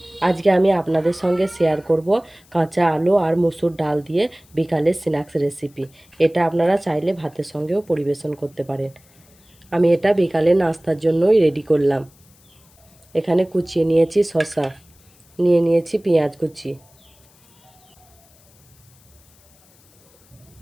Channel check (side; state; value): left; noise; hiss, 30 dB below the sound